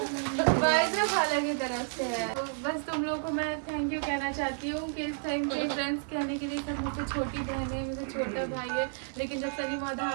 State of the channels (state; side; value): silent; left; 56 dB below the other